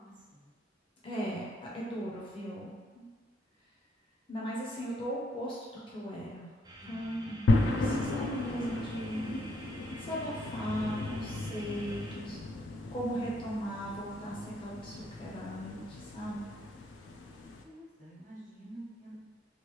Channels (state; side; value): normal; both; correlation 0.74